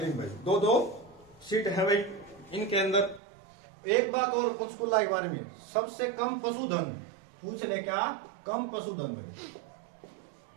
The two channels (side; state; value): left; drops out; at 3.2 s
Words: में। 2 सीट है भाई इनके अंदर। एक बात और पंचकुला के बारे में, सबसे कम पशुधन पूछ ले क्या? कम पशुधन भाई,